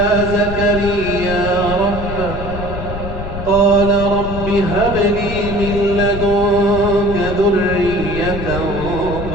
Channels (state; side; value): noise; left; rumble, 7 dB below the sound